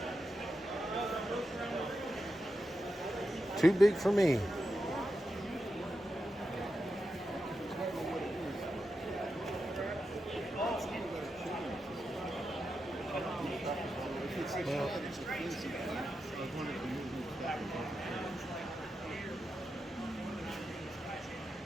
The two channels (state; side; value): normal; both; correlation 0.88